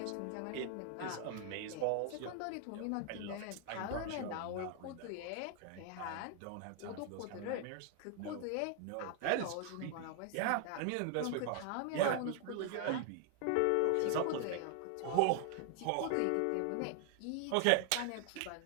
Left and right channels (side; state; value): both; different; correlation 0.00